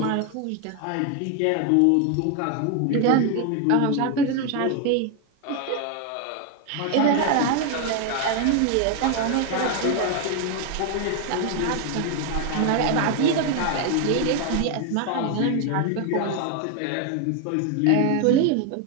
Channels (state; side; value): different; both; correlation 0.01